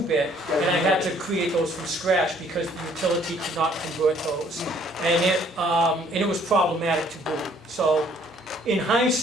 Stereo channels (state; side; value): normal; both; correlation 0.61